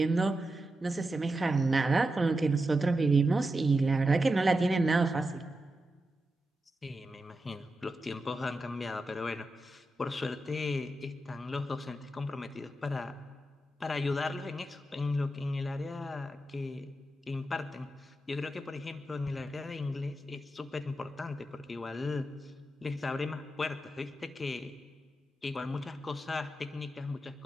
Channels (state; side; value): normal; both; correlation 0.89